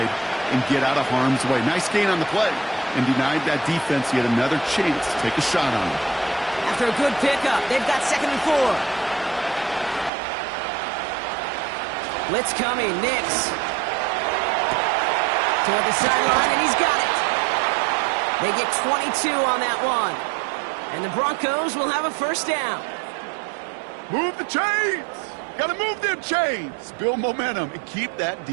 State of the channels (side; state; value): left; drops out; at 10.1 s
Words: and get out of harm's way. Nice gain on the play, and denied that defense yet another chance to take a shot on him. After a good pickup, they've got 2nd and 4. Blitz coming, Nix. Toward the sideline, and he's got it. They get 22 on that one. And the Broncos will have a 1st down. Move the chains! Gotta move them chains! Build momentum and keep that